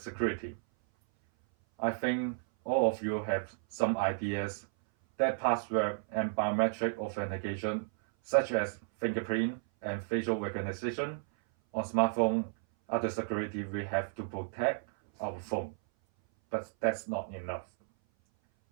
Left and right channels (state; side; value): silent; left; 56 dB below the other